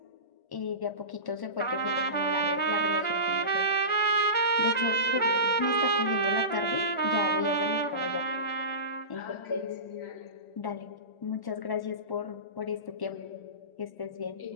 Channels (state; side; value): late; right; 1.4 ms